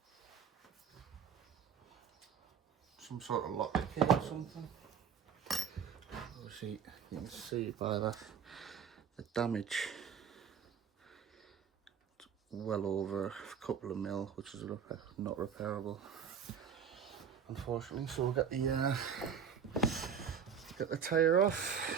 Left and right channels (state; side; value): quieter; left; 7.5 dB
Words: Some sort of lock key or something. Obviously, you can see by that the damage. It's well over a couple of mil, which is not repairable, unfortunately. So we'll get the tyre off,